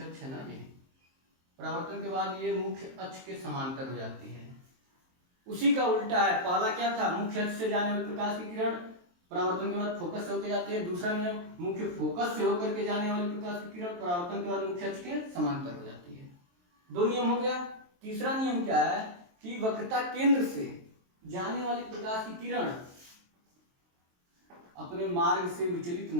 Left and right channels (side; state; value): left; late; 23 ms